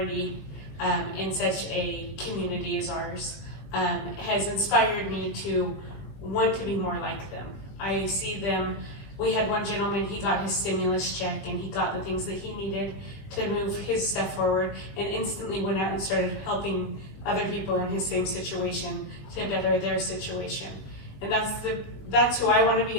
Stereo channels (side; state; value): right; late; 20 ms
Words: in such a community as ours, has inspired me to want to be more like them. I see them. We had one gentleman, he got his stimulus check and he got the things that he needed to move his stuff forward, and instantly went out and started helping other people in his same situation to better their situation. And that's who I want to